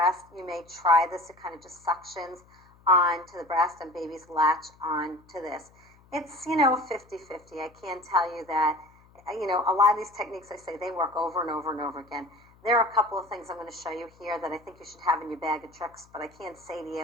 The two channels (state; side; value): noise; left; hum, 28 dB below the sound